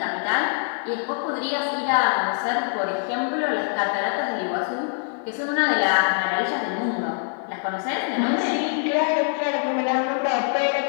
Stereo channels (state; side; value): silent; right; 58 dB below the other